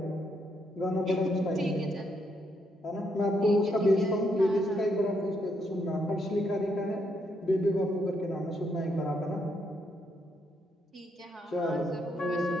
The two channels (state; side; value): normal; both; correlation 0.76